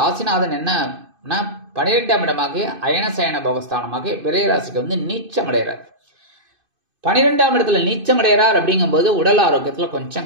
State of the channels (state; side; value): late; left; 2.5 ms